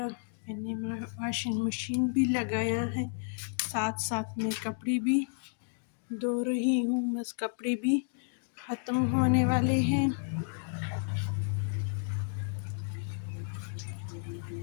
میں نے واشنگ مشین بھی لگایا ہے، ساتھ ساتھ میں کپڑے بھی دھو رہی ہوں، بس کپڑے بھی ختم ہونے والے ہیں۔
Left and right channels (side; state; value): right; silent; 56 dB below the other